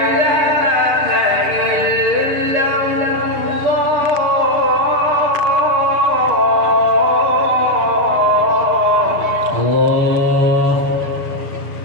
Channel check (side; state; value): left; late; 6.8 ms